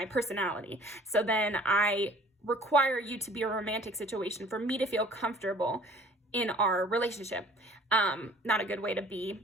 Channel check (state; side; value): normal; both; correlation 0.51